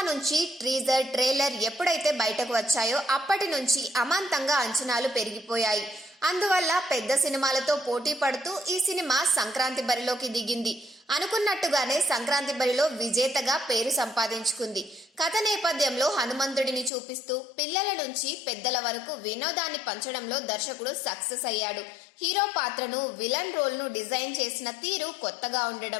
నుంచి ట్రీజర్, ట్రైలర్ ఎప్పుడైతే బయటకు వచ్చాయో అప్పటి నుంచి అమాంతంగా అంచనాలు పెరిగిపోయాయి. అందువల్ల పెద్ద సినిమాలతో పోటీ పడుతూ ఈ సినిమా సంక్రాంతి బరిలోకి దిగింది. అనుకున్నట్టుగానే సంక్రాంతి బరిలో విజేతగా పేరు సంపాదించుకుంది. కథ నేపథ్యంలో హనుమంతుడిని చూపిస్తూ పిల్లల నుంచి పెద్దల వరకు వినోదాన్ని పంచడంలో దర్శకుడు సక్సెస్ అయ్యాడు. హీరో పాత్రను, విలన్ రోల్ను డిజైన్ చేసిన తీరు కొత్తగా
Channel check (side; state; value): right; drops out; at 16.9 s